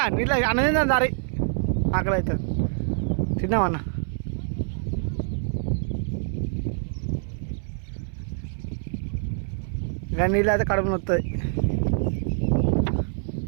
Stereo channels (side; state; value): left; silent; 60 dB below the other